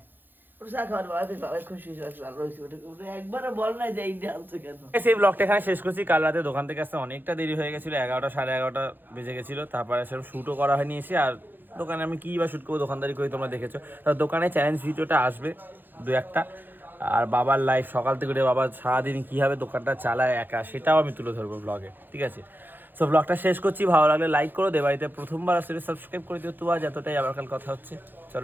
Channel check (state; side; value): late; left; 0.092 ms